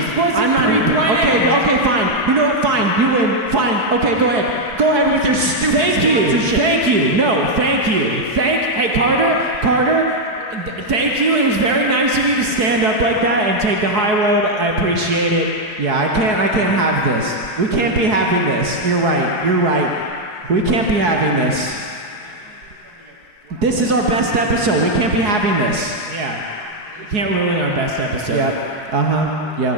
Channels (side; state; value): left; late; 4.7 ms